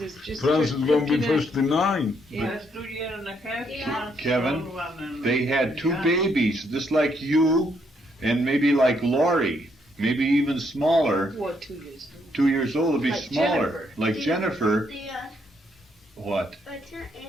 is just Francis is gonna be 59. 59. Yeah. That's 2 years and a half. Yeah. Kevin, they had 2 Yeah. babies, just like you, and maybe like Lori, maybe even smaller. What, 2 years? 2 years old would be Like smaller. Jennifer. Like Jennifer. What?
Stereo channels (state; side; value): normal; both; correlation 0.73